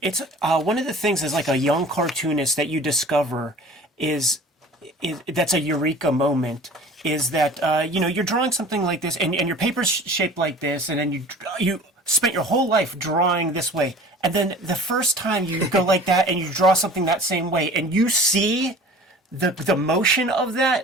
one of the things as like a young cartoonist that you discover is that's a eureka moment. Is that you're drawing something like this, and your paper's shaped like this, and then you spent your whole life drawing this way, and then the first time you go like that and you draw something that same way, and you see the motion of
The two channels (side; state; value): both; normal; correlation 0.43